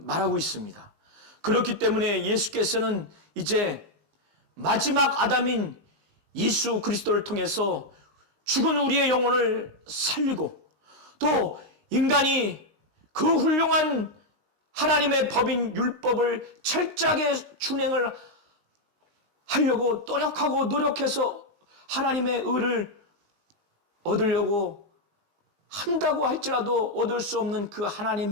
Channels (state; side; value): late; left; 19 ms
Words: 말하고 있습니다. 그렇기 때문에 예수께서는 이제 마지막 아담인 예수 그리스도를 통해서 죽은 우리의 영혼을 살리고 또 인간이 그 훌륭한 하나님의 법인 율법을 철저하게 준행을 하려고 노력해서 하나님의 의를 얻으려고 한다고 할지라도 얻을 수 없는 그